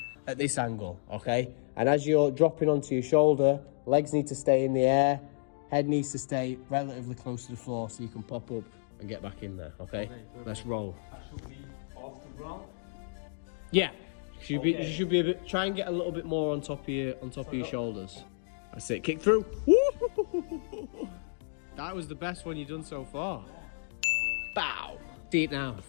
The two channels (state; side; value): silent; right; digital silence